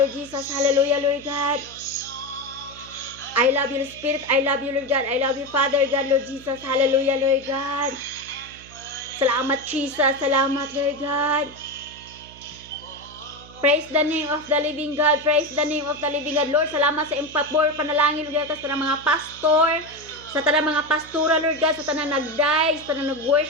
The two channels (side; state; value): right; noise; hum, 21 dB below the sound